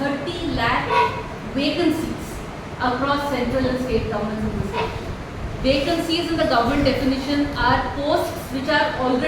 lakh vacancies across central and state governments in this country. Vacancies in the government definition are posts which are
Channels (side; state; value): both; identical; correlation 1.00